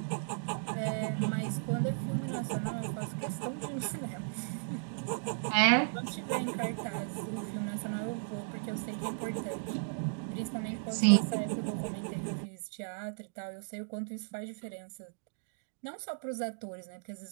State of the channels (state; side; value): silent; left; digital silence